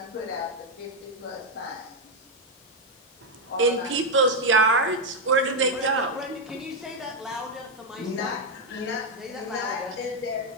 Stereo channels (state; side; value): normal; both; correlation 0.02